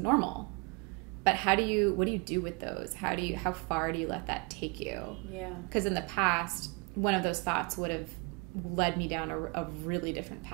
But what do you do with those? How far do you let that take you? Yeah. Because in the past, one of those thoughts would have led me down a really different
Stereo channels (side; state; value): left; quieter; 31.0 dB